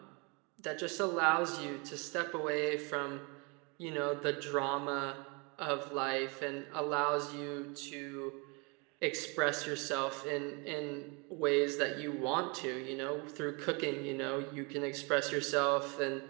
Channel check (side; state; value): left; quieter; 30.9 dB